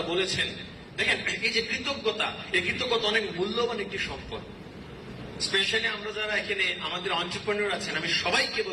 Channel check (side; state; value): both; identical; correlation 1.00